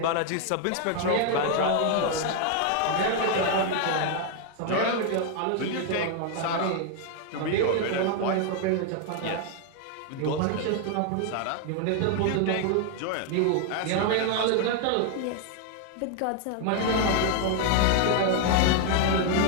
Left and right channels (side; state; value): both; different; correlation 0.00